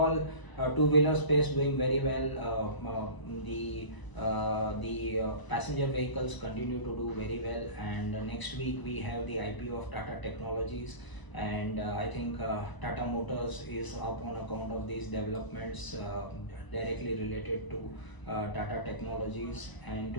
two-wheeler space doing very well. The passenger vehicles continue to do very well, and next week we have the IPO of Tata Technologies, and I think Tata Motors is up on account of these developments directly related to Tata Technologies. And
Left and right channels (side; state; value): right; late; 1.0 ms